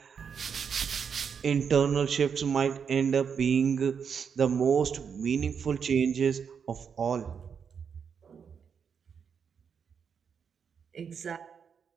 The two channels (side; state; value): left; quieter; 6.8 dB